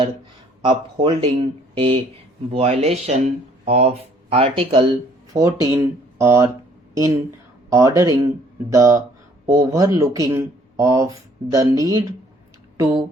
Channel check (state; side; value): normal; both; correlation 0.60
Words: upholding a violation of Article 14 or in ordering the overlooking of the need to